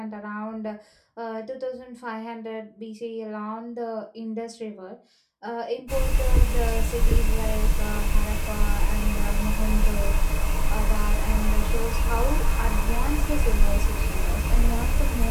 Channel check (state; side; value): identical; both; correlation 1.00